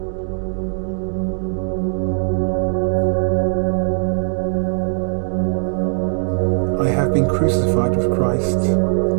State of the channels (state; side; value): silent; left; digital silence